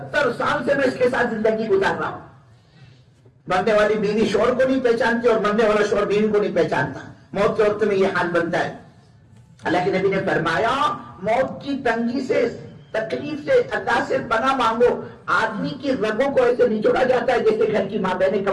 سال سے میں اس کے ساتھ زندگی گزار رہا ہوں. مرنے والی بیوی شوہر کو نہیں پہچانتی اور مرنے والا شوہر بیوی کو نہیں پہچانتا. موت کے وقت میں یہ حال بنتا ہے. اللہ کے نبی نے فرمایا موت کی تنگی سے، تکلیف سے اللہ سے پناہ مانگو. آدمی کی رگوں کو ایسے نچوڑا جاتا ہے جیسے گھر کی ماں بہنیں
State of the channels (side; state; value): both; identical; correlation 1.00